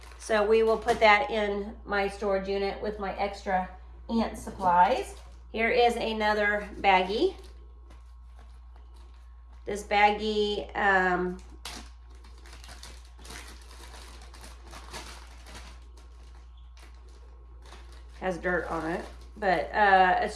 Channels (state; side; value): identical; both; correlation 1.00